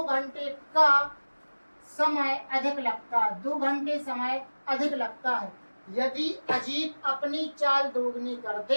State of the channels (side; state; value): both; inverted; correlation -1.00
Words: का समय अधिक लगता है। 2 घंटे समय अधिक लगता है। यदि अजीत अपनी चाल दोगुनी कर